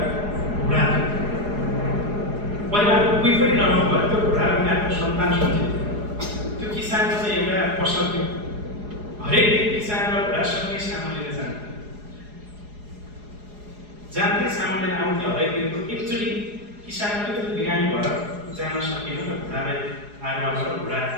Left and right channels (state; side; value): late; left; 4.8 ms